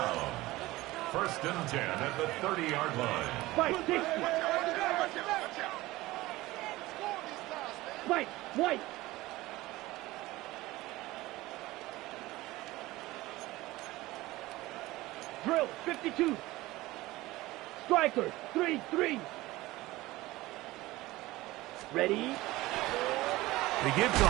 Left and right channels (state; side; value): quieter; left; 18.7 dB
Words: 1st and 10 at the 30-yard line. Fight, 60. Fight, White. Drill, 52. Striker, 3-3. Ready? He gives to